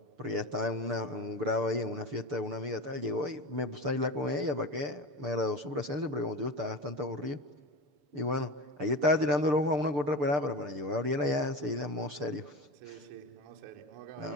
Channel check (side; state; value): left; late; 6.8 ms